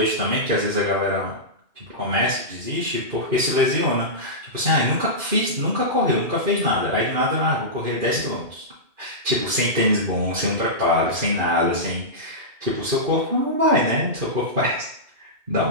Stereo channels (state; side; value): late; left; 2.5 ms